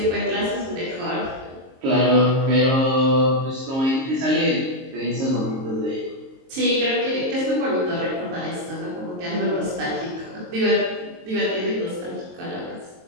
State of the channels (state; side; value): late; left; 22 ms